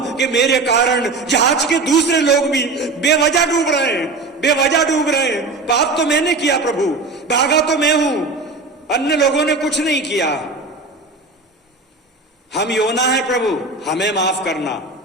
कि मेरे कारण जहाज के दूसरे लोग भी बेवजह डूब रहे हैं। पाप तो मैंने किया प्रभु, भागा तो मैं हूं, अन्य लोगों ने कुछ नहीं किया। हम योना है प्रभु, हमें माफ करना,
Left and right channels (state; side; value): quieter; left; 3.6 dB